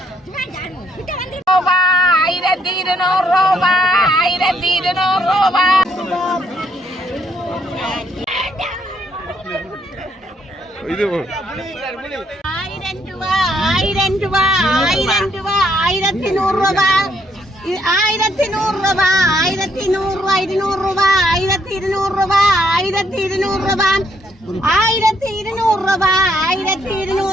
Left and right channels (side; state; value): both; normal; correlation 0.71